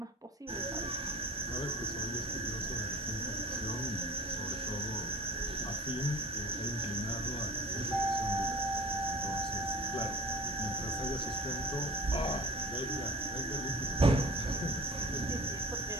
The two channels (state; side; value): normal; both; correlation 0.42